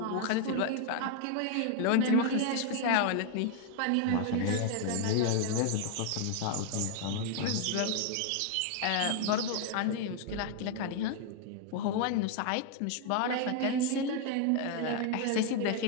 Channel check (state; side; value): different; both; correlation 0.00